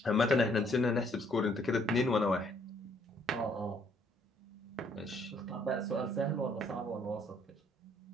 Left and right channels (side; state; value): both; normal; correlation 0.66